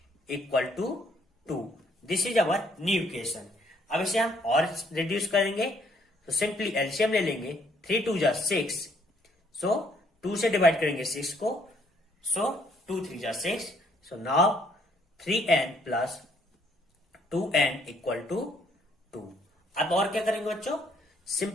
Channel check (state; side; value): normal; both; correlation 0.66